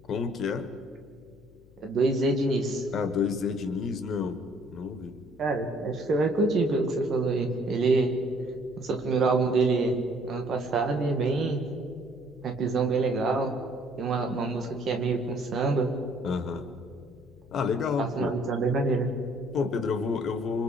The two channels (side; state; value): left; noise; hum, 25 dB below the sound